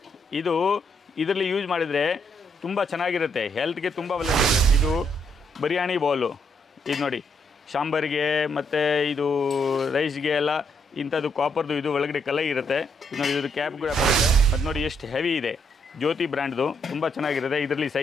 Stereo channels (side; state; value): both; normal; correlation 0.75